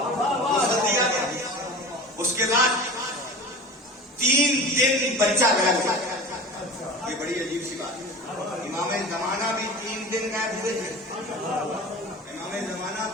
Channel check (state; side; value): normal; both; correlation 0.35